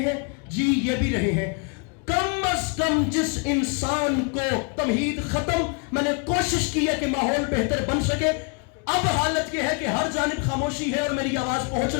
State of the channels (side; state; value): right; quieter; 34.6 dB